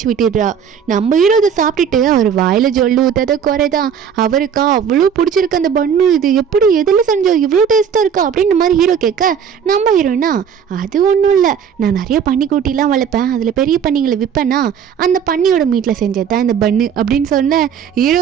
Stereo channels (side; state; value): left; quieter; 7.7 dB